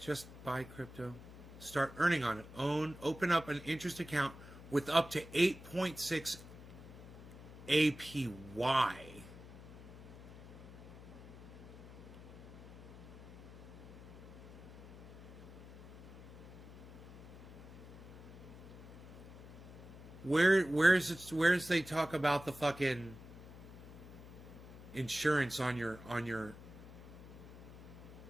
Just buy crypto. Start earning on it. Open up an interest account with up to 8.6 APY. Where's they talk about the fucking insurance on your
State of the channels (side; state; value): left; noise; hum, 15 dB below the sound